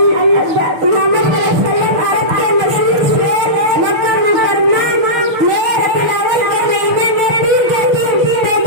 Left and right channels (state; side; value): late; left; 6.3 ms